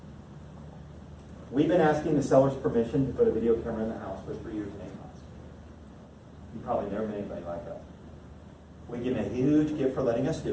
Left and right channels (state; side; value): identical; both; correlation 1.00